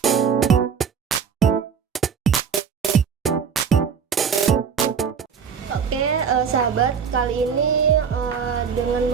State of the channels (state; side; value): quieter; left; 6.8 dB